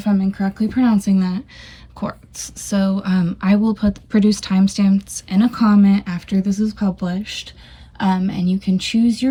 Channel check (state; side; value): identical; both; correlation 1.00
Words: I'm incorrectly pronouncing that. Quartz. So I will produce timestamps in a comment after this is published. And you can choose